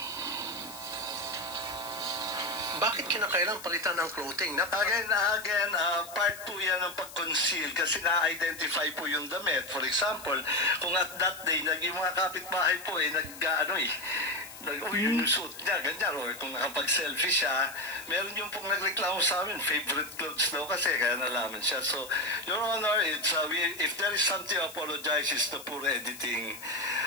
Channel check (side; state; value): left; noise; hiss, 15 dB below the sound